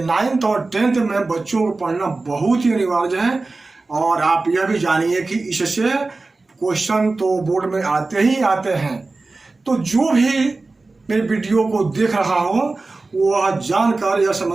9th और 10th में बच्चों को पढ़ना बहुत ही अनिवार्य है। और आप यह भी जानिए कि इससे क्वेश्चन तो बोर्ड में आते ही आते हैं। तो जो भी मेरे वीडियो को देख रहा हो वह जानकर यह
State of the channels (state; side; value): quieter; left; 3.5 dB